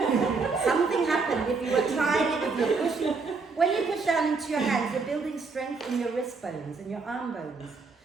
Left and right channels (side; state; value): left; quieter; 4.4 dB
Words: Something happened if you were trying it, if you're pushing. When you push down into your hands, you're building strength in your wrist bones and your arm bones.